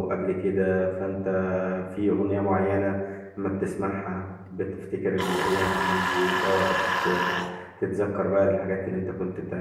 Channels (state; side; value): identical; both; correlation 1.00